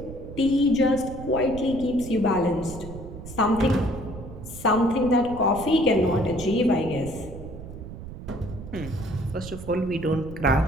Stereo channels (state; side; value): noise; right; rumble, 12 dB below the sound